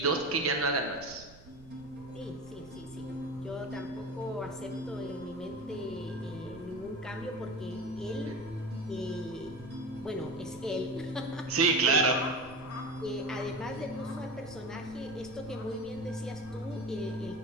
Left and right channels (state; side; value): noise; right; rumble, 20 dB below the sound